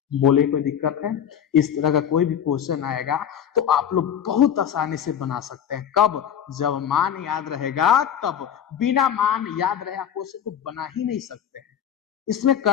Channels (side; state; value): right; quieter; 9.0 dB